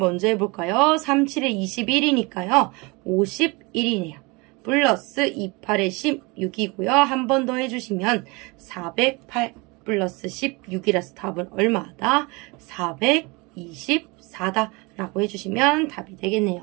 해볼까요? 3, 7에 21이니까요. 51이네요. 플러스 2, 8에 16이고요. 한 번 더 해주시면 408 플러스 16이라서 답은 얼마다? 424다 라고 해주시면 답이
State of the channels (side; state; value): left; quieter; 26.7 dB